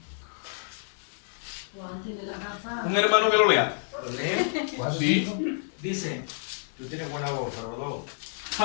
Un hermano que lo lea. ¿Lo lee? Sí. Dice, Tú tienes buena voz, Salvador.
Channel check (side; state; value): right; silent; digital silence